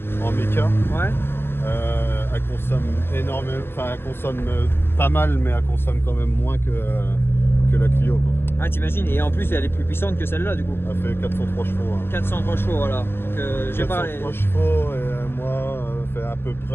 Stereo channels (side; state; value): right; late; 0.11 ms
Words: En méca. Ouais. Elle consomme énormément. Enfin, elle consomme pas mal, mais elle consomme quand même moins que la Clio, quoi. Ah, t'imagines, et en plus elle est plus puissante que celle-là du coup. Elle fait 403 chevaux. Hein. 403 chevaux, voilà. Donc j'ai pas les... 403 chevaux et moi fait à peu